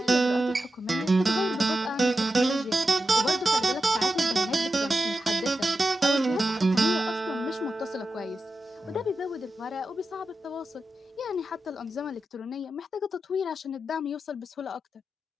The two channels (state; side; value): normal; both; correlation 0.91